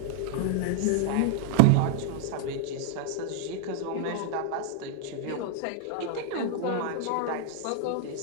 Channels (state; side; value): different; both; correlation 0.00